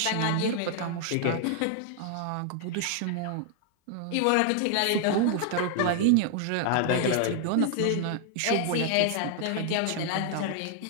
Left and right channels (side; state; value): both; different; correlation 0.00